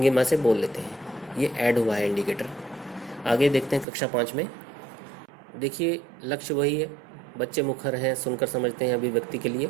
से बोल लेते हैं। ये ऐड हुआ है इंडिकेटर। आगे देखते हैं कक्षा 5 में। देखिए लक्ष्य वही है, बच्चे मुखर हैं, सुनकर समझते हैं, अभिव्यक्ति के लिए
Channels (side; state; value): left; drops out; at 3.9 s